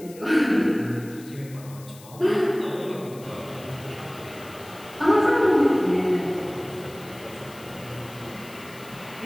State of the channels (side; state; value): left; noise; hiss, 21 dB below the sound